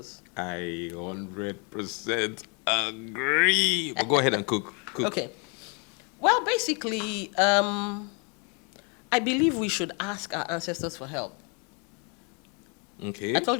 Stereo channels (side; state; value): right; quieter; 34.5 dB